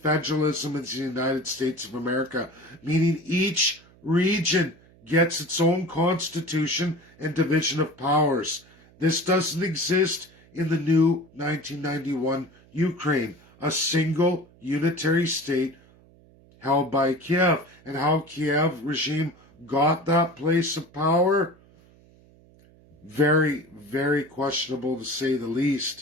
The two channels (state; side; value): noise; right; hum, 27 dB below the sound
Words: federalism as the United States of America, meaning each region gets its own constitution and division of powers. This doesn't exist in the new 1991 Ukraine, a single unitary state held by Kiev. And how Kiev regime got that place of power? Very, very questionable to say the